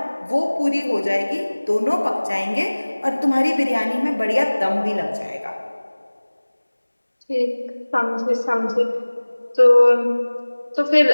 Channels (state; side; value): inverted; both; correlation -1.00